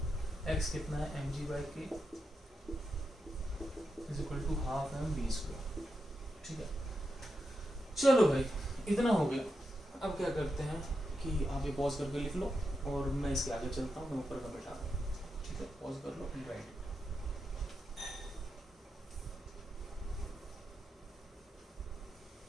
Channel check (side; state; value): both; normal; correlation 0.87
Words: x कितना है mg/k is equal to half mv², ठीक है। चलो भाई इतना हो गया। अब क्या करते हैं कि आप ये पॉज करके लिख लो और मैं इसके आगे चलता हूँ, मैं ऊपर का बैठा, ठीक है। पॉज कर लो, राइट।